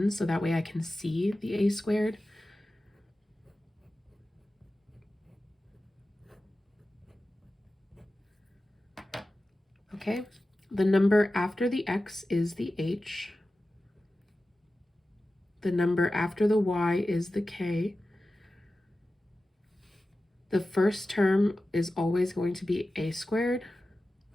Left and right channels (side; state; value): both; normal; correlation 0.95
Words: so that way I can see the a squared. Okay, the number after the x is the h. The number after the y is the k. The first term is always going to be a squared.